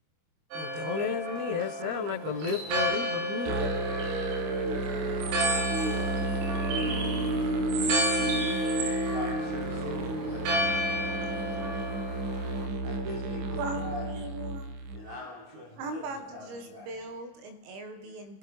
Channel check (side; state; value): left; late; 25 ms